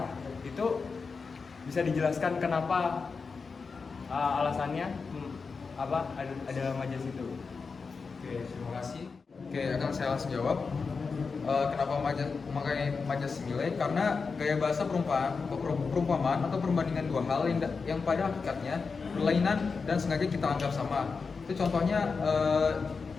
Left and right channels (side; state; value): right; quieter; 4.9 dB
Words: Itu bisa dijelaskan kenapa alasannya apa ada majas itu? Oke, terima kasih. Oke, akan saya langsung jawab. Kenapa memakai majas simile? Karena gaya bahasa perumpamaan atau perbandingan dua hal yang pada hakikatnya berlainan dan sengaja kita anggap sama. Itu contohnya